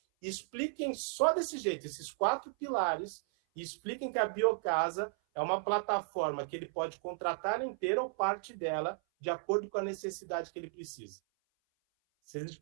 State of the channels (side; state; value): left; silent; 54 dB below the other